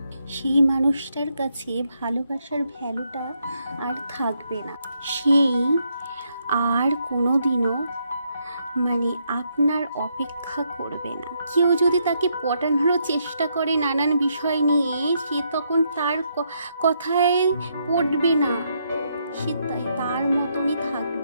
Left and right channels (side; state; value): both; inverted; correlation -0.77